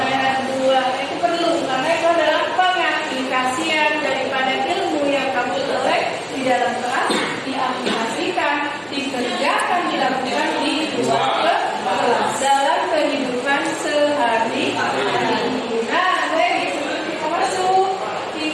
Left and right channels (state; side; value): identical; both; correlation 1.00